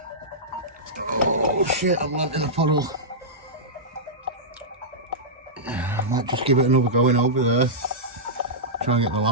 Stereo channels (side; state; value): both; normal; correlation -0.13